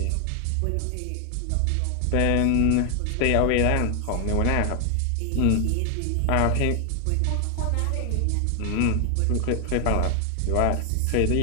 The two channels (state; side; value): different; both; correlation 0.00